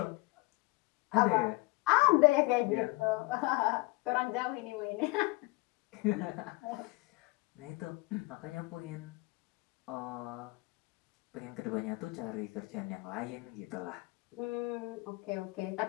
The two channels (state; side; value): quieter; right; 23.5 dB